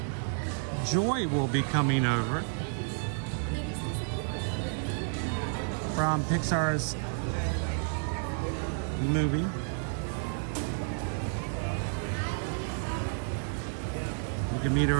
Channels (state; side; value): silent; left; 57 dB below the other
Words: Joy will be coming over from Pixar's movie. You can meet